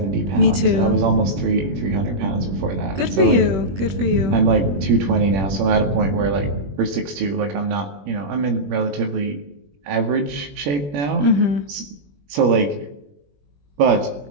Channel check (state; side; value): late; left; 21 ms